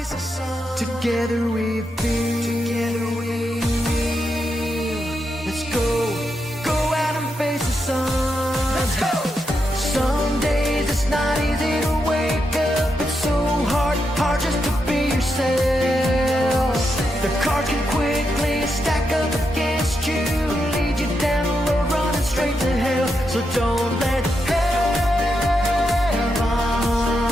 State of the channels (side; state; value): both; normal; correlation 0.84